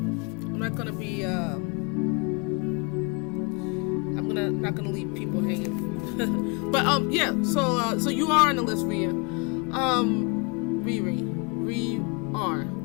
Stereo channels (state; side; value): quieter; right; 31.7 dB